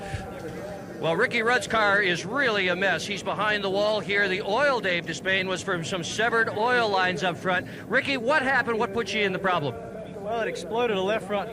Well, Ricky Rudd's car is really a mess. He's behind the wall here. The oil, Dave Despain, was from some severed oil lines up front. Ricky, what happened? What put you in the problem? Well, it exploded a left front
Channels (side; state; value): both; identical; correlation 1.00